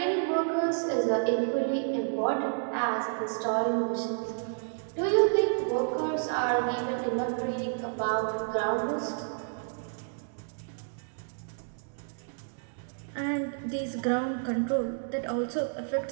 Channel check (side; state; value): left; silent; digital silence